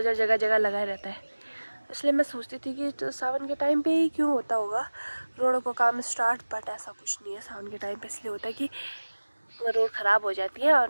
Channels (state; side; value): inverted; both; correlation -1.00